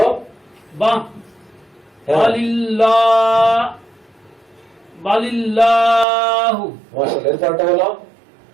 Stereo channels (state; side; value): drops out; left; at 6.1 s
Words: বা হ্যাঁ। বালিল্লাহু। মাশাআল্লাহ, এরপরটা বলো।